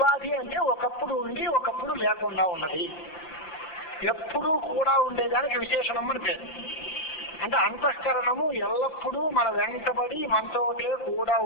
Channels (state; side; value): late; right; 6.0 ms